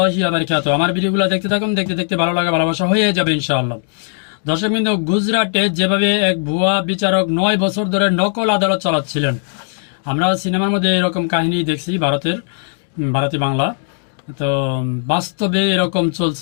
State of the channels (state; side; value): silent; right; digital silence